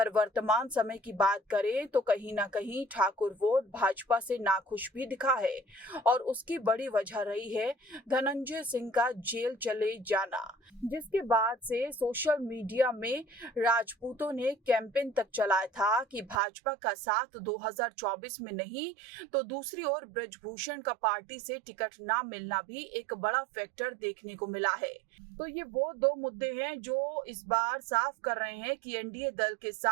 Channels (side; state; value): left; drops out; at 16.4 s